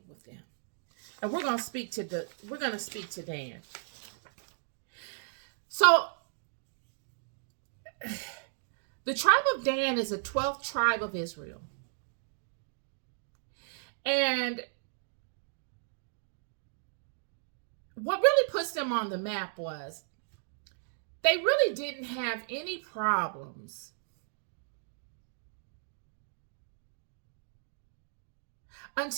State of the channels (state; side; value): silent; left; digital silence